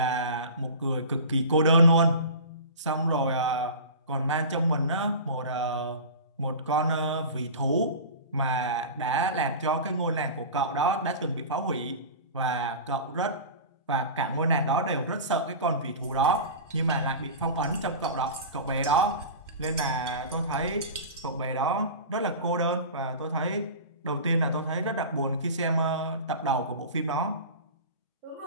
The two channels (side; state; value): both; inverted; correlation -0.33